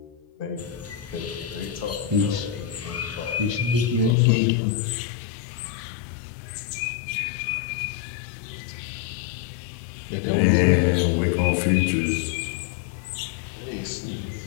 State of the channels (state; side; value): drops out; right; at 4.2 s